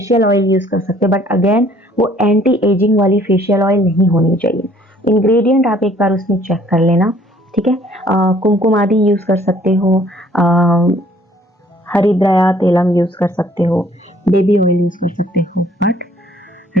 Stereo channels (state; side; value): normal; both; correlation 0.59